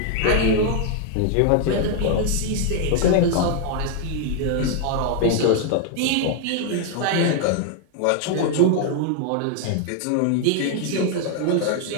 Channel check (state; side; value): different; both; correlation 0.00